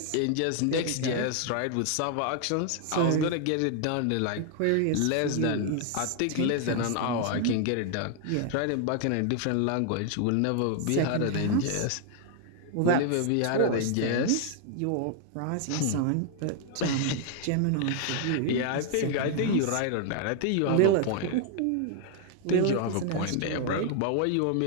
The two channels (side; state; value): both; different; correlation 0.00